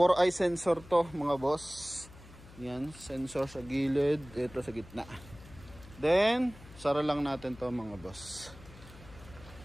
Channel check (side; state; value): left; noise; hum, 19 dB below the sound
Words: sensor to mga boss. Yan, sensor sa gilid, ito sa gitna. Then sara lang natin to mga boss.